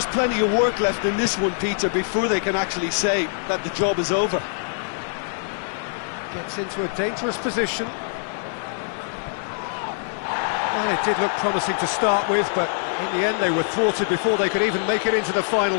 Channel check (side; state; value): right; silent; digital silence